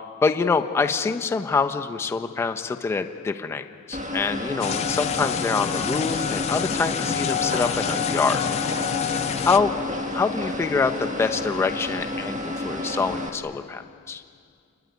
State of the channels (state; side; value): quieter; right; 4.3 dB